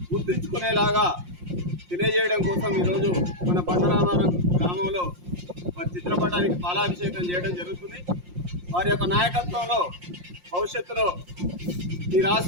గుర్తుంచుకునేలాగా తెలియజేయడం కోసం ఈరోజు మన బండరామారం గ్రామంలో వారి చిత్రపటానికి పాలాభిషేకం చేయడం జరుగుతుంది. వారి యొక్క నాయకత్వంలో భవిష్యత్తులో ఈ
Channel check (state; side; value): late; left; 5.6 ms